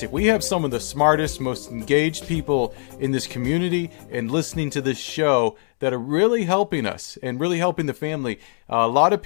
We have some of the smartest, most engaged people in this community and listening to this show that are really helping us and really helping the family. A lot of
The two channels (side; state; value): right; silent; digital silence